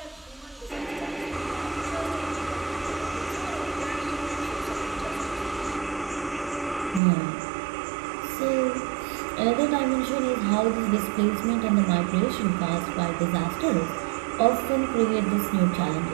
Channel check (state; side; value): drops out; left; at 7.0 s